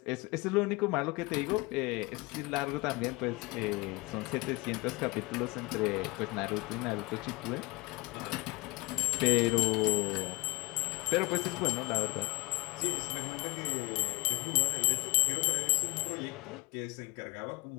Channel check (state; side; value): quieter; right; 25.5 dB